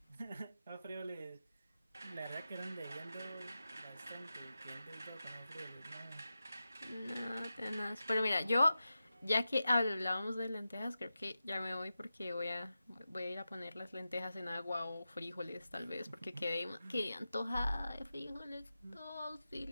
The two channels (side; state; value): both; inverted; correlation -0.92